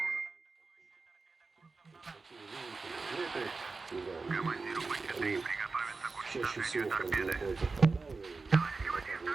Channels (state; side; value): quieter; left; 4.1 dB